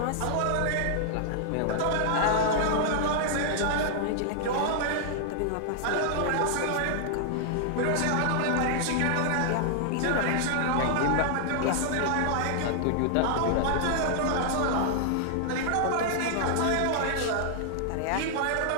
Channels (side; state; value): both; different; correlation -0.01